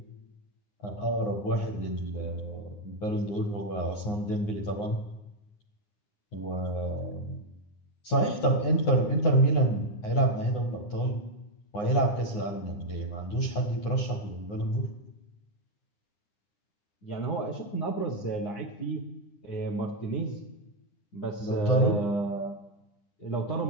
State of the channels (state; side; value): late; right; 9.6 ms